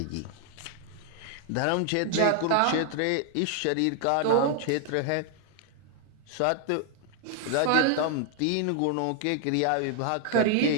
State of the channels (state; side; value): different; both; correlation 0.00